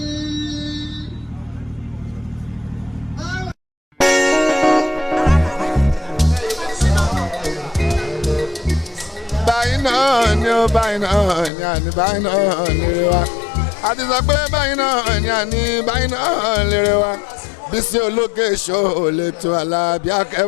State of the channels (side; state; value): right; drops out; at 11.5 s